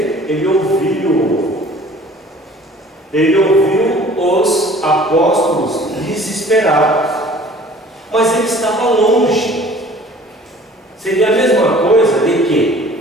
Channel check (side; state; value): both; normal; correlation 0.49